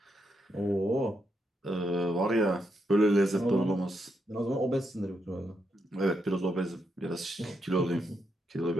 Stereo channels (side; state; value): both; normal; correlation 0.81